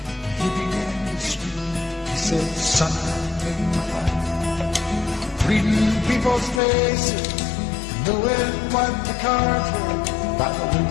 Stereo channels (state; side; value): drops out; right; at 6.6 s